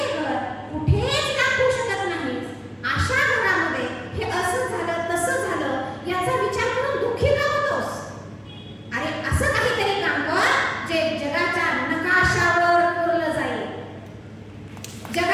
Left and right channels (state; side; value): identical; both; correlation 1.00